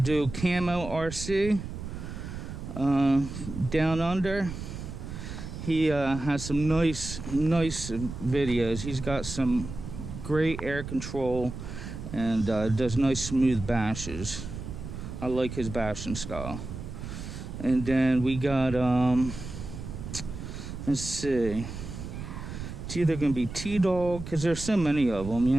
Camo RC down under. He has some nice videos. He's got some great air control and does nice smooth bashes. I like his bashing style. And then we got let's see, it's either gonna be T-Dog, because there's so many of them, you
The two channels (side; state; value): right; noise; rumble, 9 dB below the sound